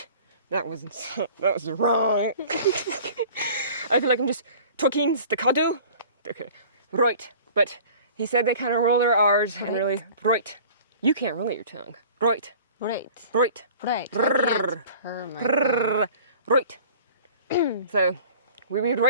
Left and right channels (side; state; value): both; inverted; correlation -0.46